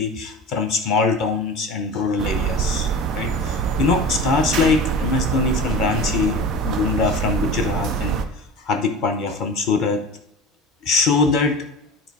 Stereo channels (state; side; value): normal; both; correlation 0.33